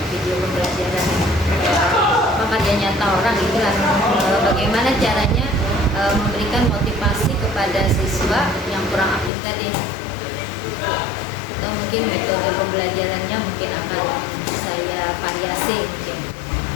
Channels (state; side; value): drops out; right; at 9.3 s